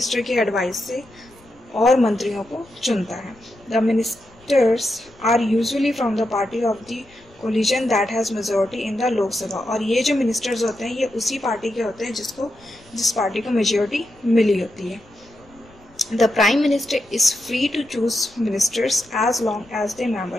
की एडवाइस से और मंत्रियों को चुनता है। The ministers are usually from the party of the coalition that has majority in the Lok Sabha. और ये जो मिनिस्टर्स होते हैं ये उसी पार्टी के होते हैं जिस पार्टी को मेजॉरिटी मिली होती है। The prime minister is free to choose ministers as long as the member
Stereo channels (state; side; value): noise; left; rumble, 28 dB below the sound